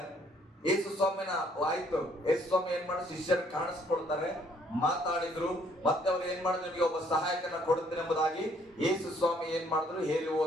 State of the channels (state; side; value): normal; both; correlation 0.64